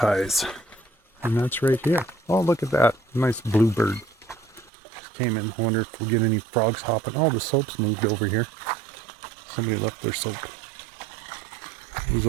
And that's right here. Oh, look at that. Nice bluebird. Came in. I wonder if we'll get any frogs hopping. Oh, the soap's moved over here. Somebody left their soap. It was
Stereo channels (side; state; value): left; drops out; at 4.7 s